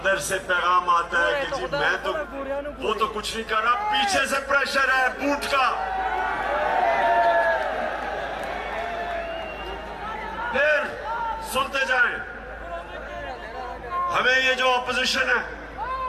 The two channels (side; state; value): both; identical; correlation 1.00